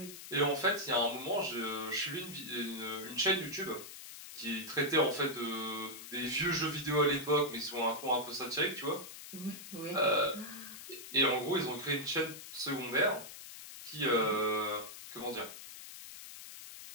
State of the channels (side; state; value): left; noise; hiss, 13 dB below the sound